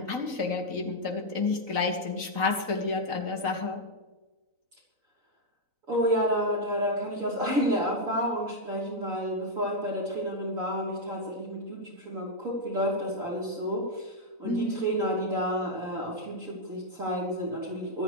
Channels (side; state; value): left; late; 3.9 ms